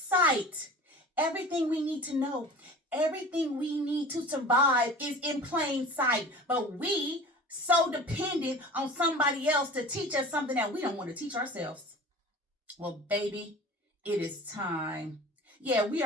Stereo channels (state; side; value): normal; both; correlation 0.39